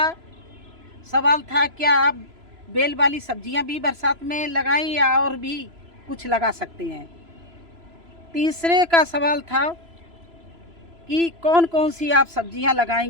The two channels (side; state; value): left; late; 3.0 ms